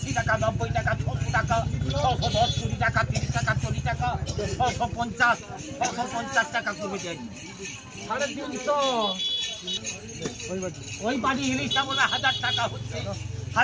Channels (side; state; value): both; identical; correlation 1.00